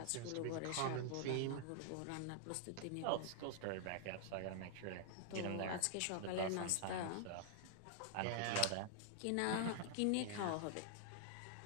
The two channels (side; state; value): both; different; correlation -0.01